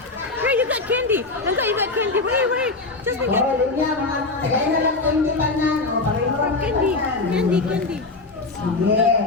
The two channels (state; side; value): quieter; right; 3.5 dB